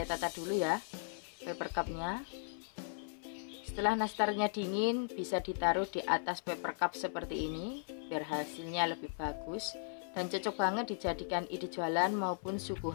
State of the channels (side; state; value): right; silent; 53 dB below the other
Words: tata dulu ya paper cupnya. Setelah nastarnya dingin, bisa ditaruh di atas paper cup seperti ini biar hasilnya lebih bagus dan cocok banget dijadikan ide jualan maupun